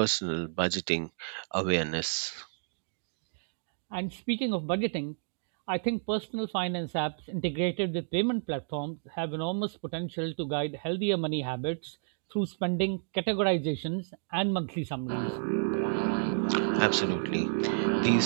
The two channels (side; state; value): left; silent; digital silence